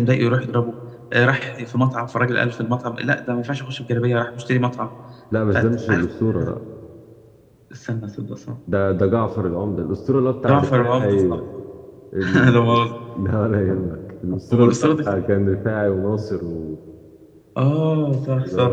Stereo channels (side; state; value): both; identical; correlation 1.00